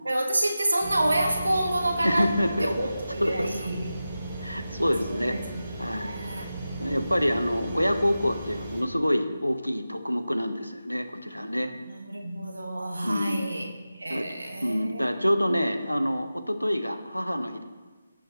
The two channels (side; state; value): both; inverted; correlation -0.93